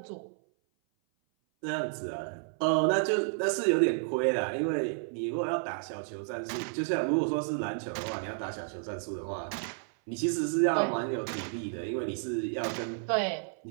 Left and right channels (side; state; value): left; silent; 56 dB below the other